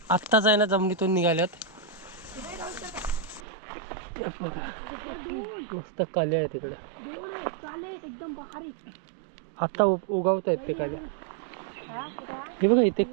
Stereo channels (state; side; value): drops out; left; at 3.4 s